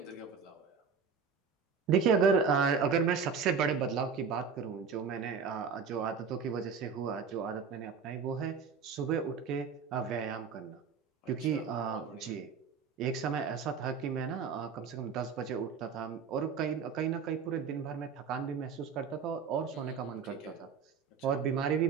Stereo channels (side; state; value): left; quieter; 6.0 dB